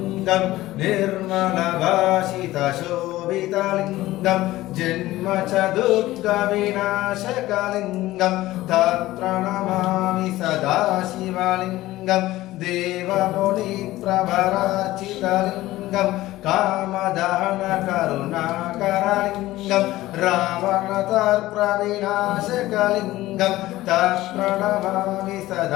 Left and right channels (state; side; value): quieter; right; 16.7 dB